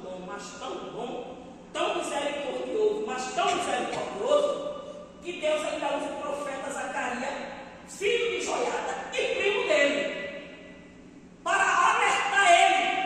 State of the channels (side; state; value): both; identical; correlation 1.00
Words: bom, mas tão bom, tão misericordioso, mas tão misericordioso, que Deus ainda usa o profeta Zacarias, filho de Joiada e primo dele, para alertar